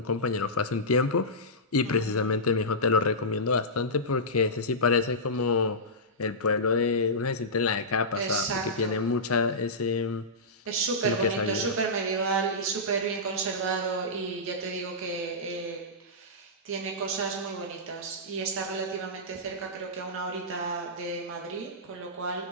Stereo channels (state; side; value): normal; both; correlation -0.15